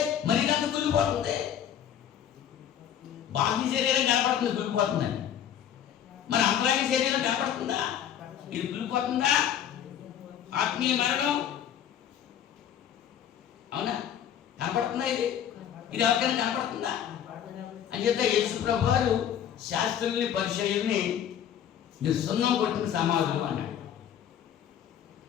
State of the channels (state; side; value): quieter; right; 9.7 dB